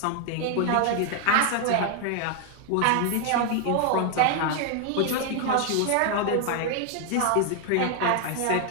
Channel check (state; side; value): different; both; correlation 0.00